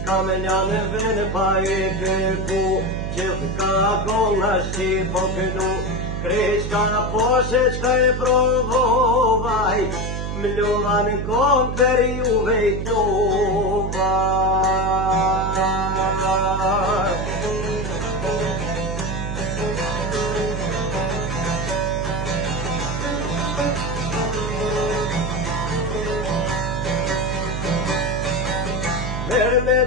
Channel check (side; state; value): right; noise; hum, 3 dB below the sound